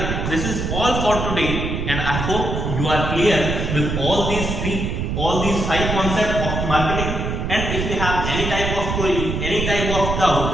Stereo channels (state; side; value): noise; right; rumble, 2 dB below the sound